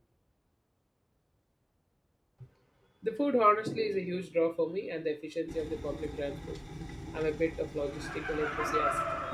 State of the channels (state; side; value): identical; both; correlation 1.00